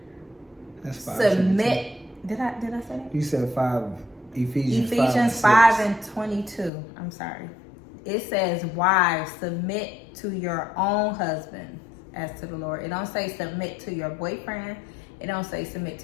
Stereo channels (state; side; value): drops out; right; at 6.7 s